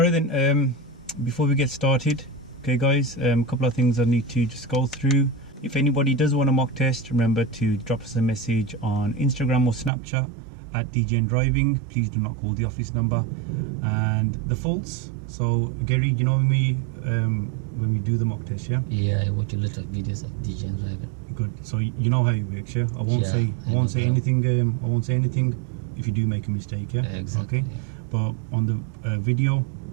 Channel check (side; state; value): left; drops out; at 9.9 s